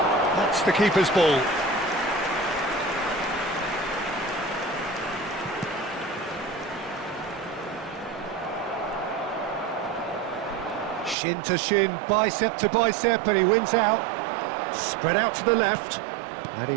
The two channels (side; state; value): left; drops out; at 11.2 s